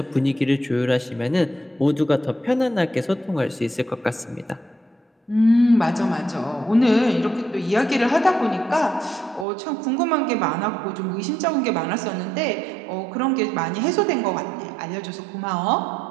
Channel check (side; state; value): left; drops out; at 9.5 s